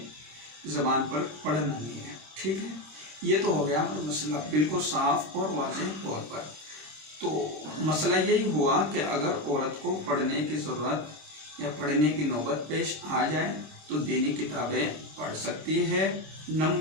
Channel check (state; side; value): late; left; 26 ms